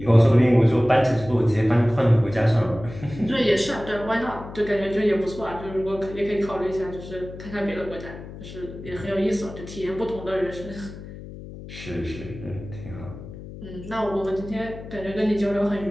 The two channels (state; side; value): noise; left; hum, 13 dB below the sound